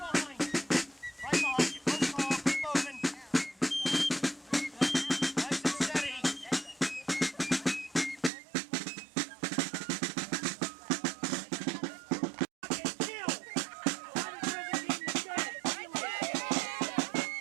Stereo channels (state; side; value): drops out; left; at 8.3 s